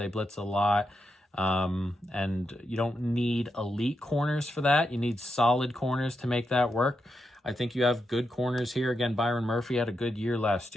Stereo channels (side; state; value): both; normal; correlation 0.85